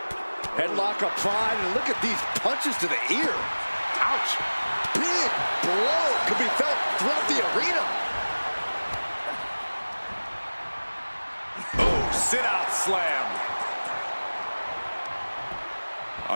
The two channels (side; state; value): both; inverted; correlation -1.00